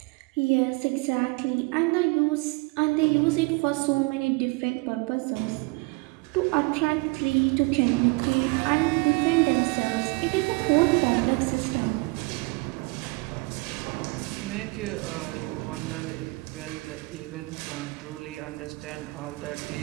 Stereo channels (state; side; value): quieter; left; 27.2 dB